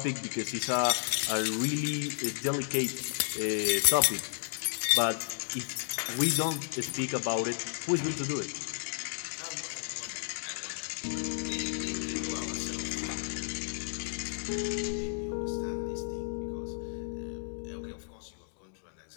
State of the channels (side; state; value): right; silent; digital silence